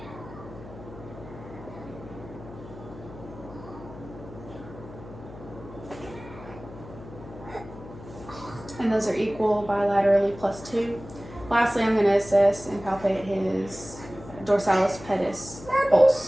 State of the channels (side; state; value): left; noise; hum, 15 dB below the sound